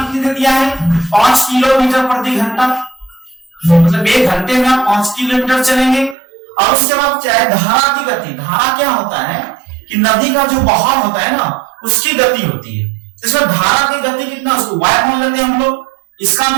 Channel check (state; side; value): drops out; left; at 6.2 s